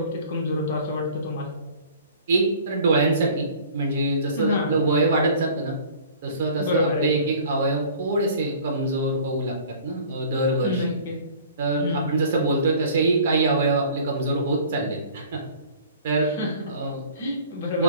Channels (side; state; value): both; inverted; correlation -0.49